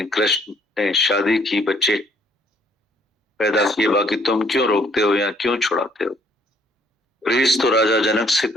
कृष्ण ने शादी की, बच्चे पैदा किए, बाकी तुम क्यों रोकते हो या क्यों छुड़ाते हो? रीस तो राजा जनक से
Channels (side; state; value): both; normal; correlation 0.64